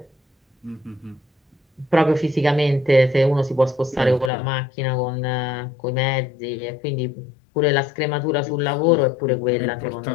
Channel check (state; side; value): drops out; right; at 4.3 s